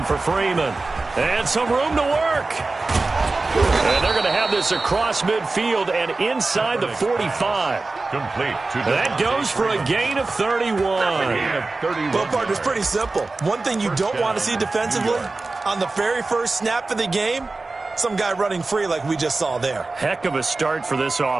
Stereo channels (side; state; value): left; quieter; 3.5 dB